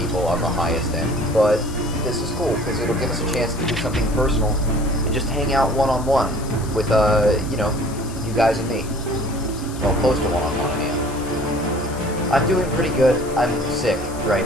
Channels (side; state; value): left; noise; hiss, 16 dB below the sound